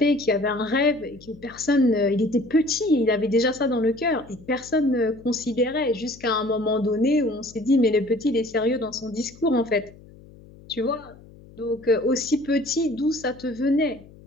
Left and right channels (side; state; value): left; noise; hum, 22 dB below the sound